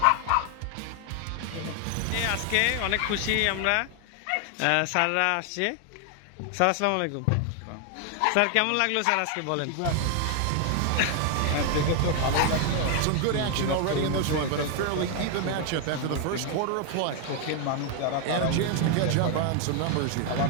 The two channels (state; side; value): different; both; correlation 0.00